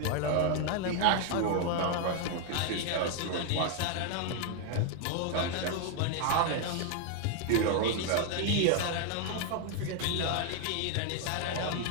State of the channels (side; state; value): both; different; correlation 0.00